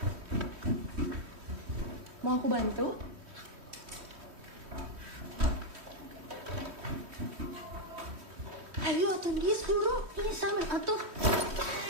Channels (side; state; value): left; late; 3.1 ms